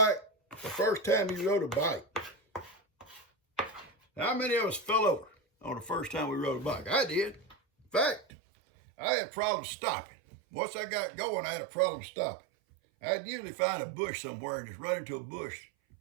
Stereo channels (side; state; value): left; drops out; at 8.2 s